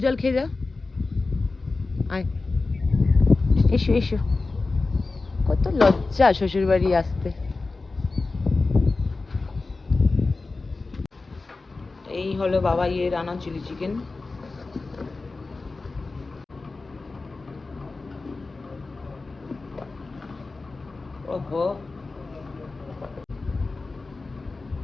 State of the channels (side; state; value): right; quieter; 3.7 dB